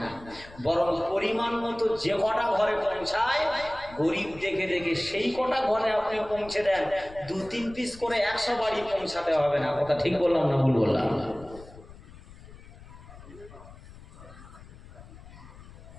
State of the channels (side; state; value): left; noise; rumble, 18 dB below the sound